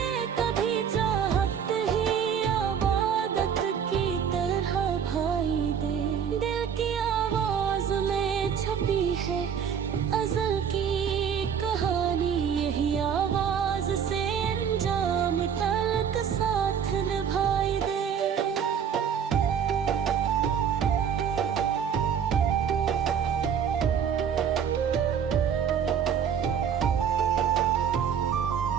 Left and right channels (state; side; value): quieter; left; 7.7 dB